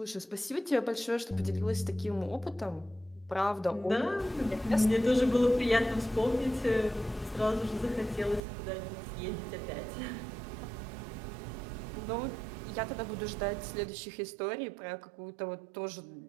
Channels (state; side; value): drops out; left; at 8.4 s